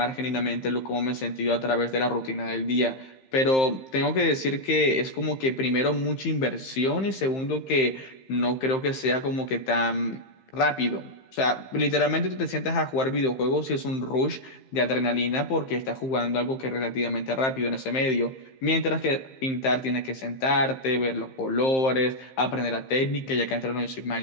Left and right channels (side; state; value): right; late; 15 ms